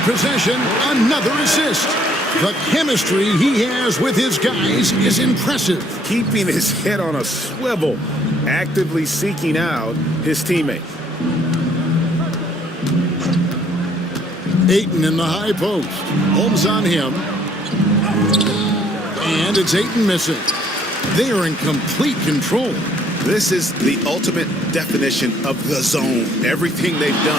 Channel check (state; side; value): normal; both; correlation 0.64